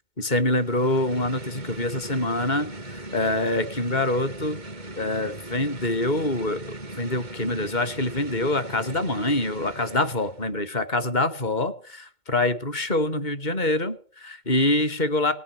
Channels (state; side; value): late; right; 2.2 ms